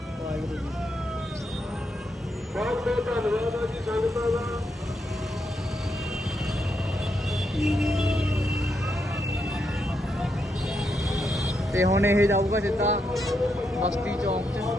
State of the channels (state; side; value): normal; both; correlation 0.81